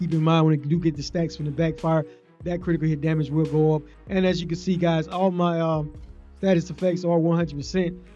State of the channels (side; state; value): both; identical; correlation 1.00